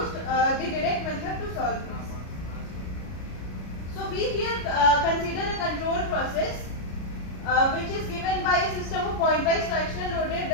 the direct method to solve this. So we here consider a control process which is given by a system of pointwise fractional loaded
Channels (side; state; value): right; late; 33 ms